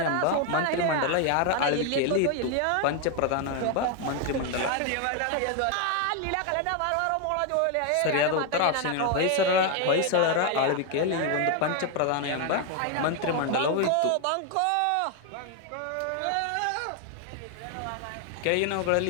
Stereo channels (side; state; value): both; different; correlation 0.01